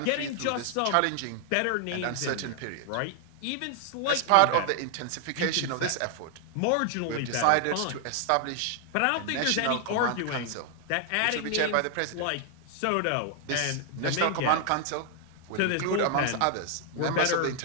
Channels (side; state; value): both; different; correlation 0.00